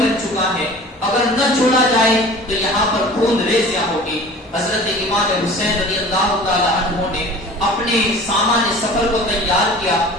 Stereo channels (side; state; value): both; normal; correlation 0.42